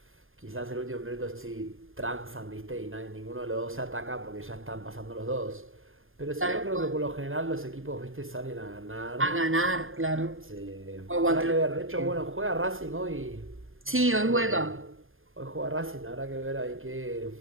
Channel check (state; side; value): late; left; 0.59 ms